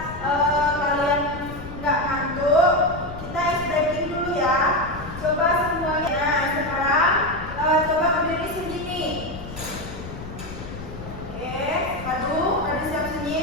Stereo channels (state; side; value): noise; left; rumble, 12 dB below the sound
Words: kalian nggak ngantuk, kita ice breaking dulu ya. Coba semuanya. Nah, sekarang